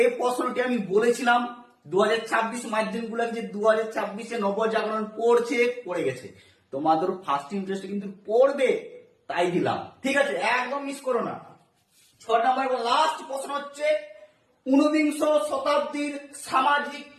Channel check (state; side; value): identical; both; correlation 1.00